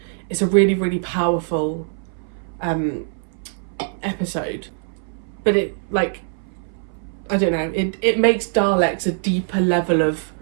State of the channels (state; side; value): silent; left; 62 dB below the other